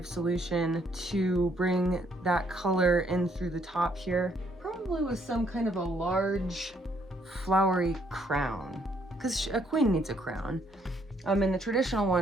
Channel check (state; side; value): normal; both; correlation 0.69